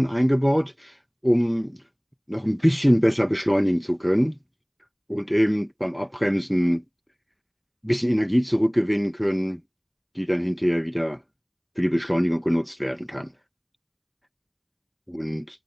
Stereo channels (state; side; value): identical; both; correlation 1.00